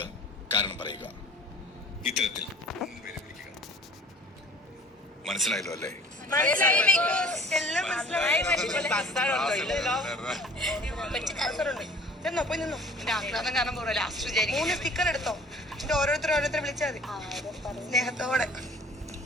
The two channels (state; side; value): normal; both; correlation 0.49